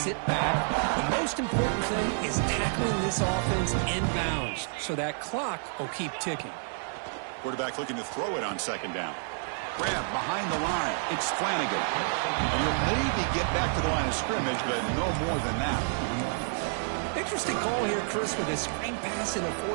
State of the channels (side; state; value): left; silent; 58 dB below the other